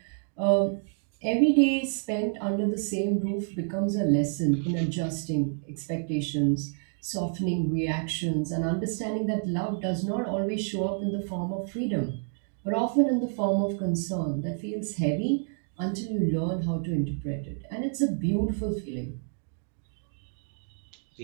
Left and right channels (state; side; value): silent; left; 59 dB below the other